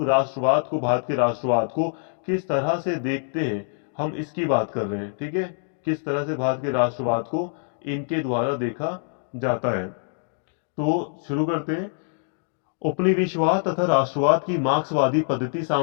राष्ट्रवाद को, भारत के राष्ट्रवाद को किस तरह से देखते हैं, हम इसकी बात कर रहे हैं, ठीक है। किस तरह से भारत के राष्ट्रवाद को इनके द्वारा देखा जाता है। तो शुरू करते हैं। उपनिवेशवाद तथा राष्ट्रवाद की मार्क्सवादी पद्धति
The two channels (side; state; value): right; silent; digital silence